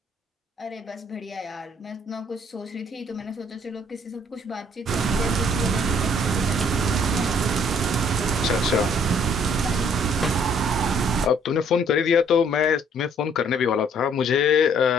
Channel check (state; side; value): normal; both; correlation 0.62